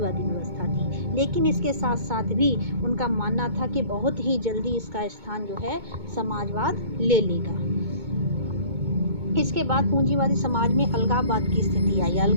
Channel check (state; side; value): late; left; 2.2 ms